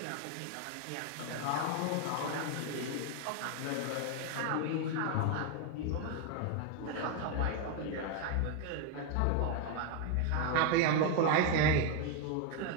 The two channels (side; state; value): both; different; correlation 0.01